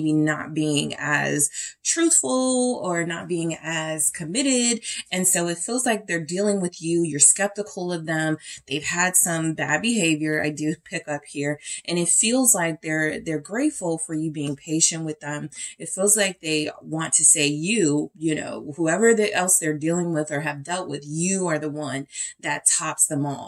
not being as truthful or not being as committed. And so it feels like they're dealing with you. You're skeptical of them. They've had some bad behavior. I do pick up here, and it feels like they're grateful for you being patient with them. It feels like they want to say whoever else they're dealing with or have dealt with, you are the one that tops them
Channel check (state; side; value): identical; both; correlation 1.00